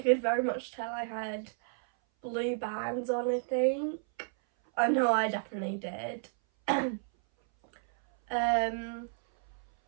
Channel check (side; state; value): left; silent; 57 dB below the other